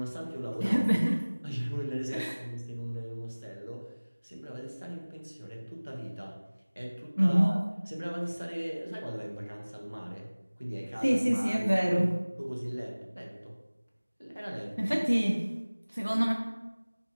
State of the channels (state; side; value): inverted; both; correlation -1.00